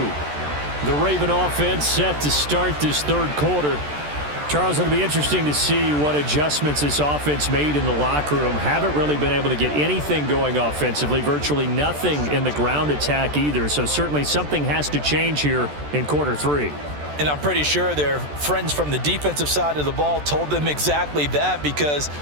The Raven offense set to start this third quarter. Charles, it'll be interesting to see what adjustments this offense made in the locker room. Haven't really been able to get anything going offensively, virtually nothing in the ground attack either. So certainly something has to change here in quarter 3. And I'm pretty sure their friends from the defensive side of the ball told them exactly that, because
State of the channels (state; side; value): late; left; 14 ms